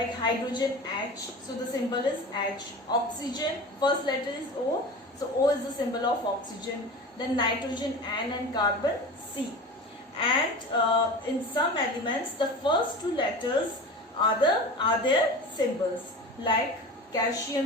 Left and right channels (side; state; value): both; normal; correlation 0.33